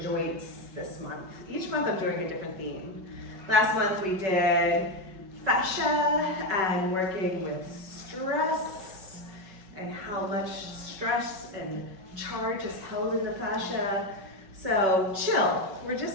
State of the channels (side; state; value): left; late; 5.3 ms